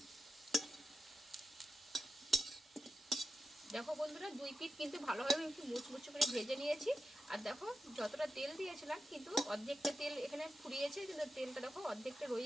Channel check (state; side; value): normal; both; correlation 0.90